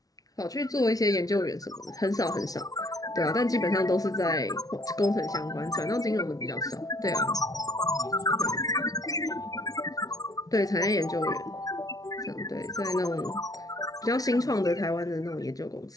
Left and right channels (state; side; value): late; right; 0.18 ms